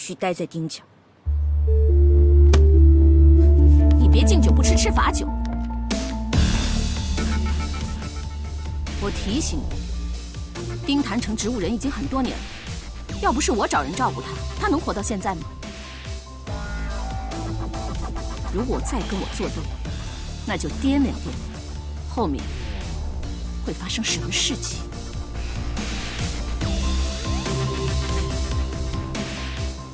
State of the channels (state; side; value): identical; both; correlation 1.00